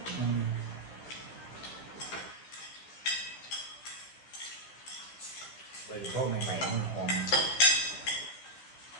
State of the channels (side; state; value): right; late; 15 ms